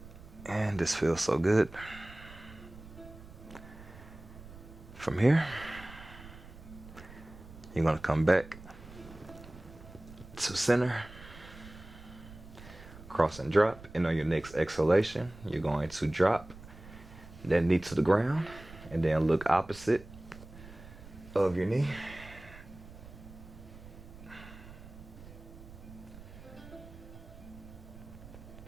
And this feels so good. From here, you're going to come back to center. Cross and drop. And on your next exhalation, you're going to drop that knee to the ground and then look opposite of your knee.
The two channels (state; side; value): noise; right; rumble, 17 dB below the sound